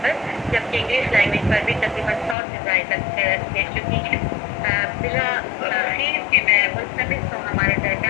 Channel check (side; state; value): right; drops out; at 2.4 s